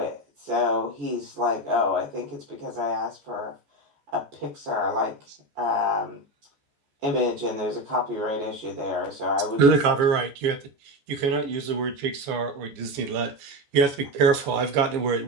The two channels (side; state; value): left; late; 14 ms